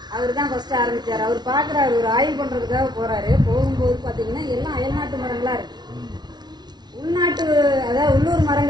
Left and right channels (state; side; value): late; left; 0.20 ms